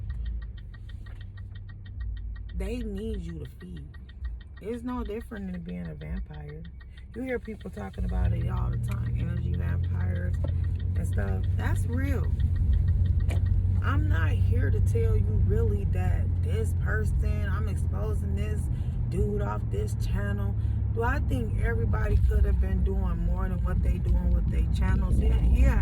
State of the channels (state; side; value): identical; both; correlation 1.00